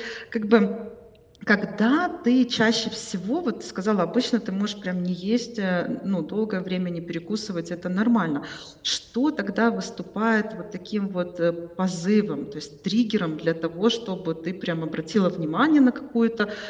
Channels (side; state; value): both; identical; correlation 1.00